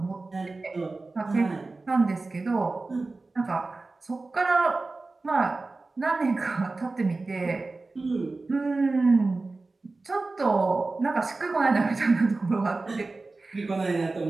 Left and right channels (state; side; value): quieter; left; 3.5 dB